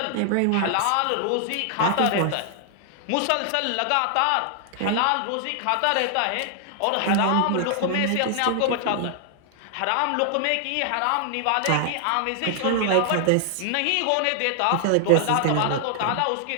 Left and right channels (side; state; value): both; different; correlation 0.00